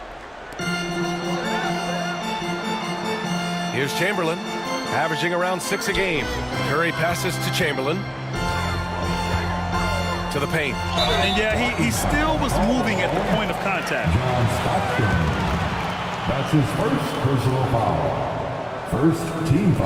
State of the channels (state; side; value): identical; both; correlation 1.00